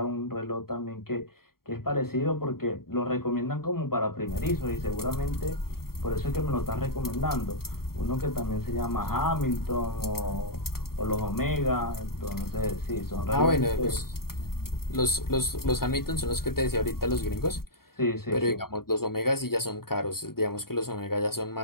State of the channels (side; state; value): right; late; 0.93 ms